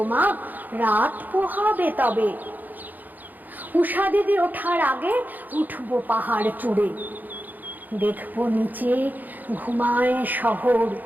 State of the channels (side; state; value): left; late; 0.084 ms